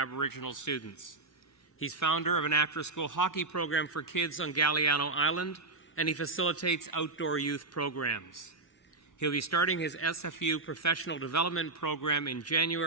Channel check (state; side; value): quieter; left; 3.5 dB